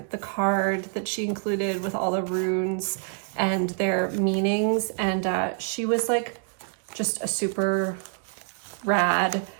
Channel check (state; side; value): silent; left; 59 dB below the other